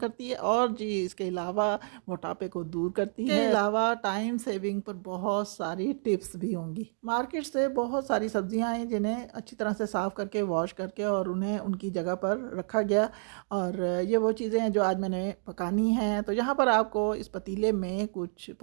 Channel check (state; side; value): silent; left; 58 dB below the other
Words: है और जी इसके अलावा मोटापे को दूर करती है। इसके अलावा टाइम सेविंग पर बहुत सारी टिप्स भी होंगी। मार्केट से बहुत सारी सब्जियां हैं जिन्हें अच्छी तरह से साफ़ करके वॉश करके और उन्हें उनकी जगह पर रखा गया और ये वो चीज़ें हैं जो आज मैंने पकानी हैं। तो यहाँ पर आपको इस पतीले में कुछ